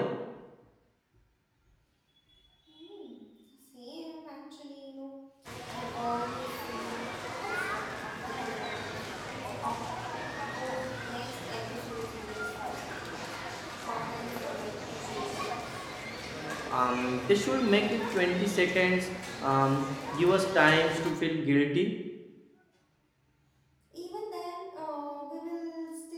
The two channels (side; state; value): both; identical; correlation 1.00